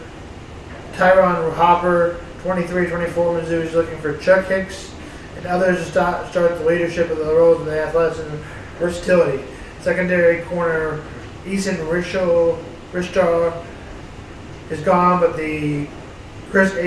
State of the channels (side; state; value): both; identical; correlation 1.00